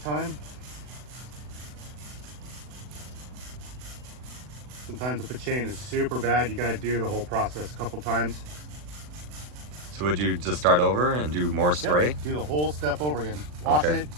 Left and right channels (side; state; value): left; late; 40 ms